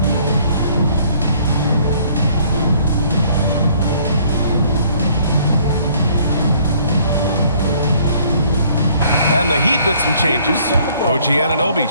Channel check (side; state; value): both; inverted; correlation -0.61